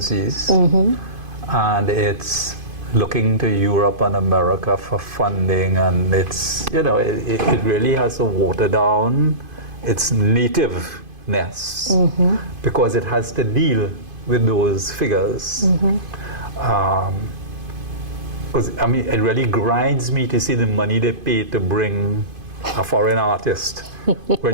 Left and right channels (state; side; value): late; left; 2.5 ms